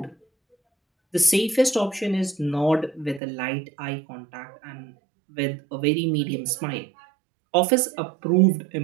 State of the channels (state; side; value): drops out; left; at 3.2 s